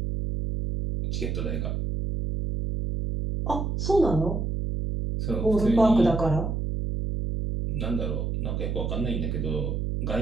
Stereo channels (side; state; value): right; noise; hum, 1 dB below the sound